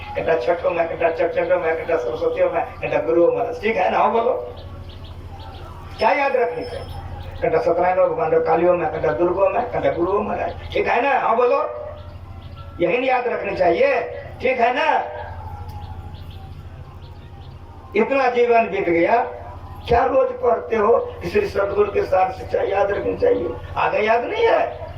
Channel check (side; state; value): both; identical; correlation 1.00